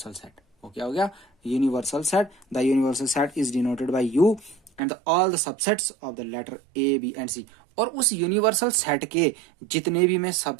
सेट। वो क्या हो गया? Universal set. The universal set is denoted by U and all the subsets of the letter A B and C. और उस यूनिवर्सल सेट के जितने भी मैं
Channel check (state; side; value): drops out; left; at 4.8 s